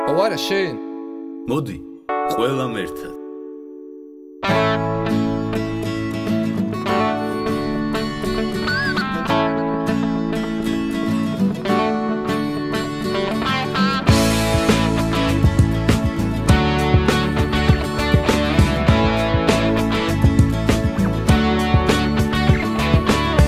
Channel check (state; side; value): identical; both; correlation 1.00